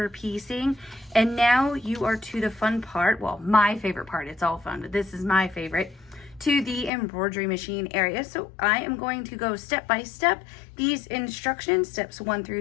piecing, and now you are to the fun part. Well, my favorite part. It's all fun, but this is my favorite. To the embroidery machine area. So I am going to go step by step these instructions, steps 1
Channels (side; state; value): right; drops out; at 6.9 s